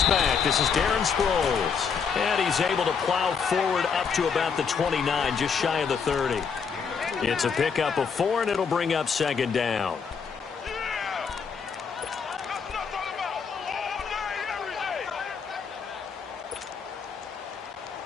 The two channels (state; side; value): quieter; right; 6.1 dB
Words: back. This is Darren Sproles. And he's able to plow forward up to about the 29, just shy of the 30. It's a pickup of 4, and it'll bring up second down.